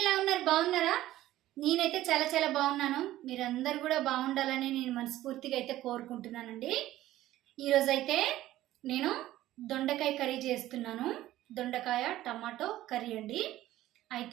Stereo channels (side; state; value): left; quieter; 14.7 dB